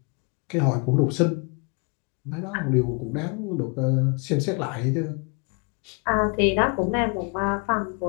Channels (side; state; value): right; quieter; 33.8 dB